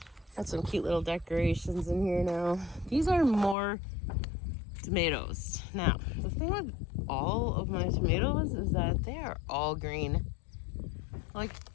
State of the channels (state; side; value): drops out; right; at 3.6 s